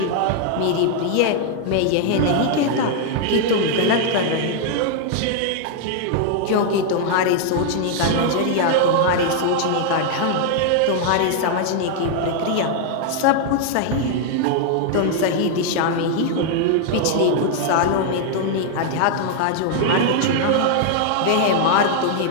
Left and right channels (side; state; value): both; different; correlation 0.00